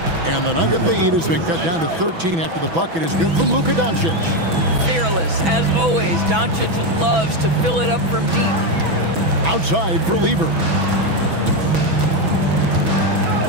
And the Nugget lead has been cut down to 13 after the bucket is good from Luka Doncic. Fearless, as always. Doncic loves to fill it up from deep. Outside for Lieber.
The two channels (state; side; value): late; left; 6.1 ms